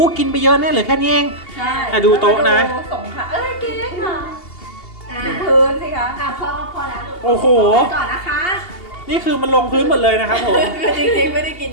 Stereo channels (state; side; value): late; right; 2.8 ms